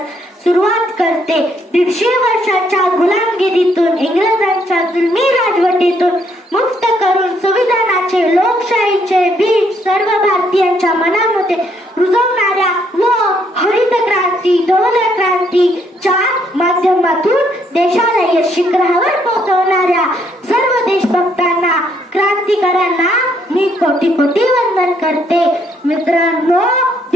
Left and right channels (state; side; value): normal; both; correlation 0.71